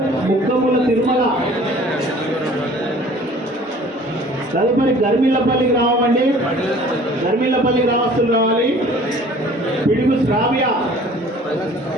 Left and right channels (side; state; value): both; normal; correlation 0.50